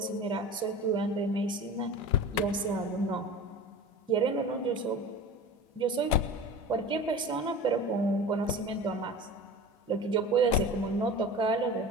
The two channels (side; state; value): both; normal; correlation 0.34